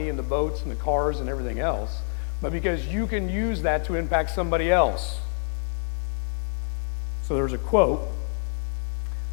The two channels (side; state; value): right; silent; digital silence